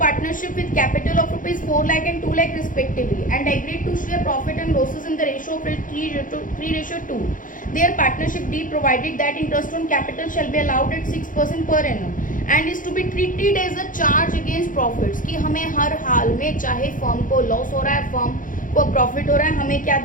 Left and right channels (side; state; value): right; late; 0.39 ms